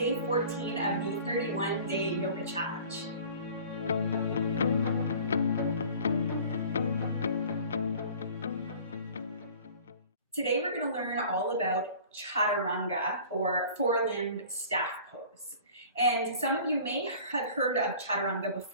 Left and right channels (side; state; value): both; inverted; correlation -0.46